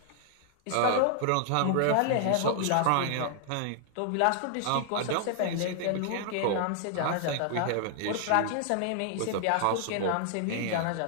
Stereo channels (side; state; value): both; different; correlation 0.00